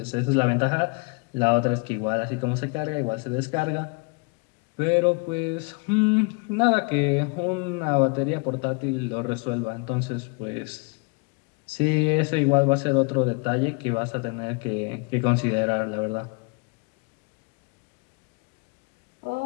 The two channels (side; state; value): right; quieter; 31.0 dB